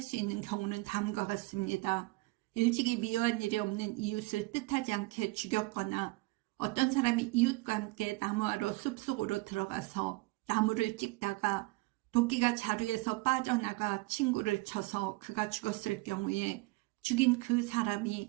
수 있는 경우는 다음과 같습니다. 일찍이 미워한 일이 없는 이웃을 뜻하지 않게 죽였거나 어떤 사람이 이웃과 함께 나무하러 숲속으로 들어가서 나무를 찍다가 도끼가 자루에서 빠져나가 친구를 쳐서 그가 죽었을 경우에 죽인 그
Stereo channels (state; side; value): quieter; left; 23.3 dB